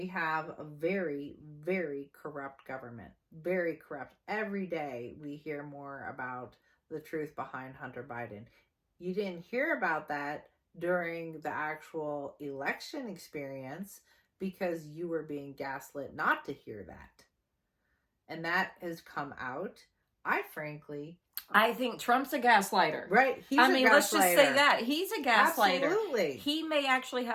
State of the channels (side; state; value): both; identical; correlation 1.00